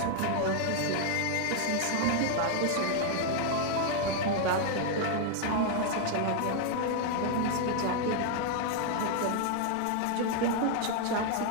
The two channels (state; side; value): different; both; correlation 0.00